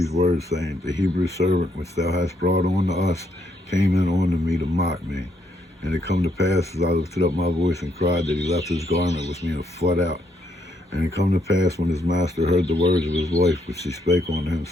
words, saying, The Hebrew servant which thou hast brought unto us came in unto me to mock me. And it come to pass, as I lifted up my voice and cried, that he left his garment with me, and fled out. And it come to pass, when his master heard the words of his wife, which she spake unto him,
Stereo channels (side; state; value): both; normal; correlation 0.74